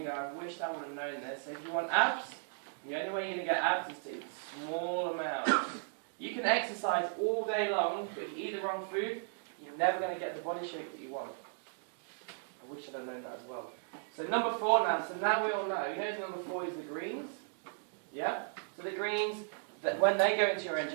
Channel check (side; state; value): left; silent; digital silence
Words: wished I would have known this. So if you want abs, the only way you're going to get abs is to eat small amounts. You can exercise all day long, but if you eat the wrong food, you're never going to get the body shape that you want. I wish I'd have known that as well. So number 4 now. So now we all know. You know number 4 is the greens? Yeah? So the greens, that when they go into your